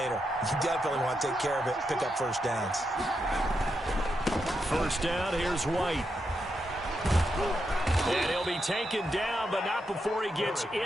You definitely want to take care of it, pick up first downs. First down, here's White. And he'll be taken down, but not before he gets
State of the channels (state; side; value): normal; both; correlation 0.84